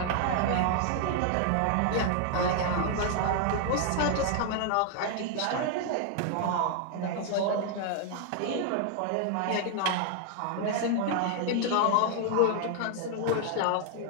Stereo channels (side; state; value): both; different; correlation 0.00